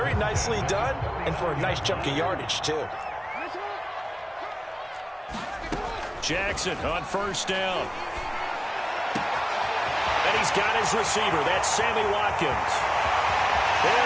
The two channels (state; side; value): identical; both; correlation 1.00